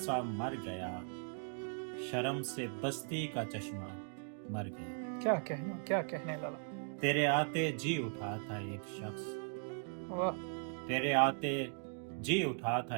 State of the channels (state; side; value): silent; left; 52 dB below the other